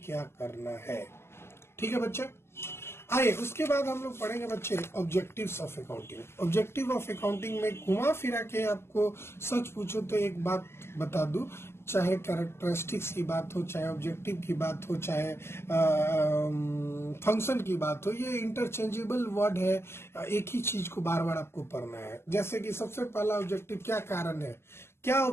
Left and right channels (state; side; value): late; right; 0.12 ms